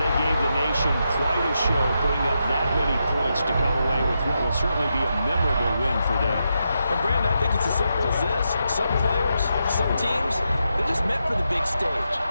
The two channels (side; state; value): both; inverted; correlation -0.85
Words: they gave the nation quite a show, putting up that many points to come away with what will certainly be a memorable win for them. And Brandon, I think it's as simple as this. Some players, some teams, they're just meant for the big stage.